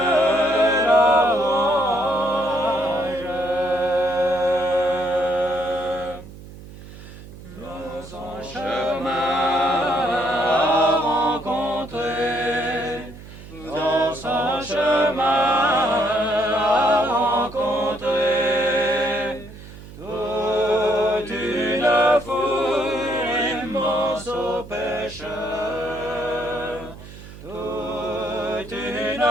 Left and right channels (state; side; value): noise; right; hum, 16 dB below the sound